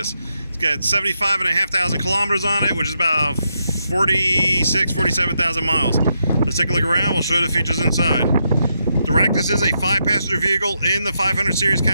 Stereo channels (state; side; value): inverted; both; correlation -0.82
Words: It's got 75,500 kilometers on it, which is about 47,000 miles. Let's take a look around. We'll show you the features inside. The Ractis is a 5-passenger vehicle in the 500 series